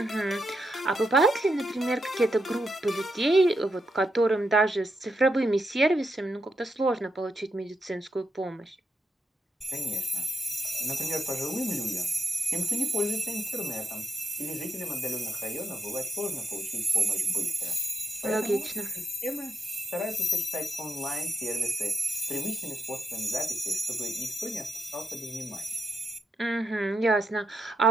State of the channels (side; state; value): both; normal; correlation 0.77